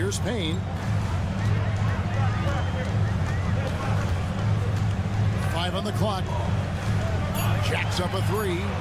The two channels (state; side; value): identical; both; correlation 1.00